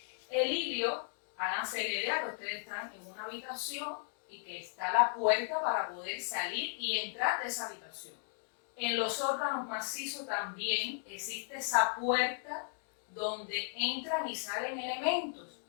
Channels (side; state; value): right; silent; 54 dB below the other